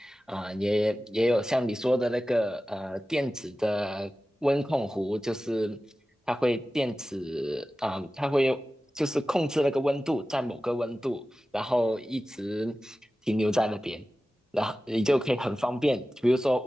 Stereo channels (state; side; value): normal; both; correlation 0.95